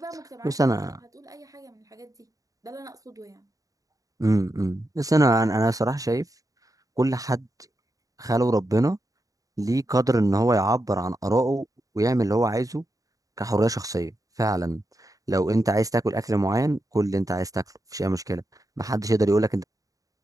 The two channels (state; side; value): late; left; 0.17 ms